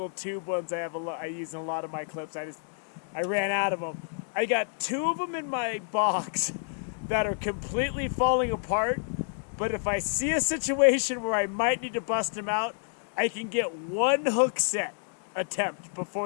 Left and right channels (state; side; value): silent; right; digital silence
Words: tube ones I use in a lot of my clips. I ran out of them. I got 2 of them in my box that are completely falling apart. But if I see a situation where I might need to bust them out, I can get 1 hook set attempt